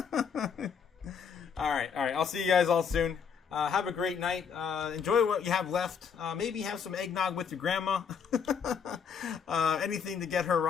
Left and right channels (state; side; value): quieter; right; 6.7 dB